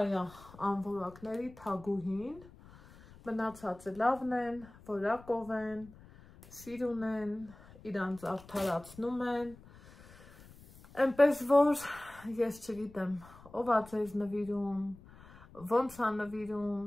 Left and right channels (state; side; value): noise; left; rumble, 21 dB below the sound